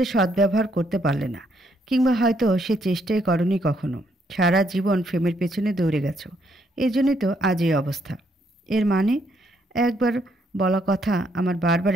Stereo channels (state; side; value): normal; both; correlation 0.73